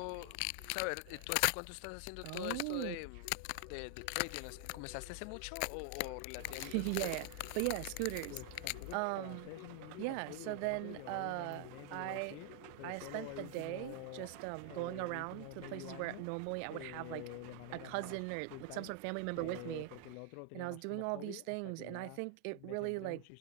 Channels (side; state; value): both; different; correlation 0.00